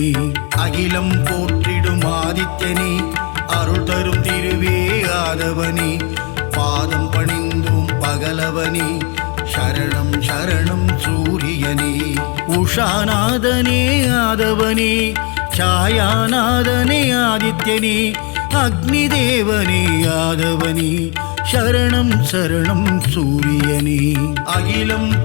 அகிலம் போற்றிடும் ஆதித்யனே, அருள் தரும் திருவே ஆதவனே, பாதம் பணிந்தோம் பகலவனே, சரணம் சரணம் சூரியனே. உஷாநாதனே ஆதவனே, சாயாநாதனே ஆதித்யனே, அக்னி தேவனே ஆதவனே, சரணம் சரணம் சூரியனே. அகிலம்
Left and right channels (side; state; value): right; quieter; 31.5 dB